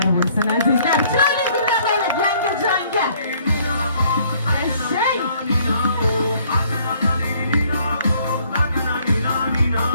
bo'lsin azizlar. Chiroyli gullar olib yangajonga. Eshey.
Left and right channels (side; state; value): both; inverted; correlation -0.62